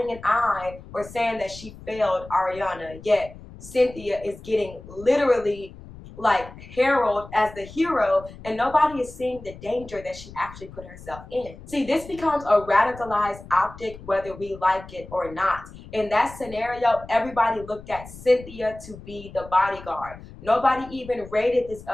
an eye or saying that she failed Ariana, yet Cynthia is getting literally like heralded as the hero, and nobody is seeing the danger that she actually put herself in. See, this becomes a radicalized optic whether we like it or not. In that scenario, everybody looked at Cynthia to be the bodyguard. Nobody even rated this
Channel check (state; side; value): noise; left; rumble, 17 dB below the sound